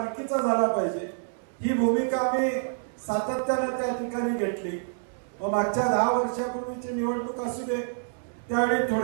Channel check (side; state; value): left; silent; digital silence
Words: झाला पाहिजे ही भूमिका आम्ही सातत्यानं त्या ठिकाणी घेतली. मागच्या 10 वर्षापूर्वीची निवडणूक असू दे, त्यावेळी